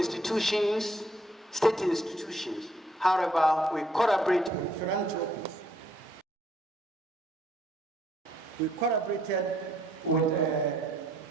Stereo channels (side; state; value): both; normal; correlation 0.67